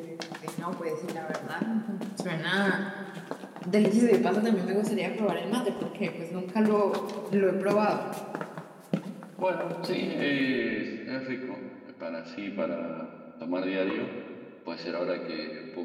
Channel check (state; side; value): identical; both; correlation 1.00